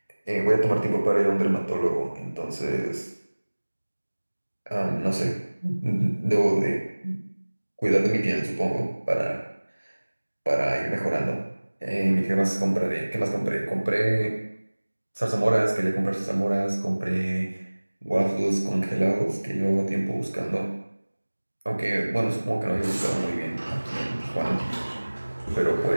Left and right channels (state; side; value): inverted; both; correlation -1.00